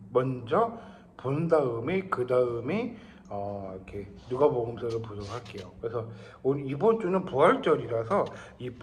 먼저 본 다음에 그 다음에 이렇게 누가복음서를 보도록 할게요. 그래서 오늘 이번 주는 부활절이라서 이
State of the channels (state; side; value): identical; both; correlation 1.00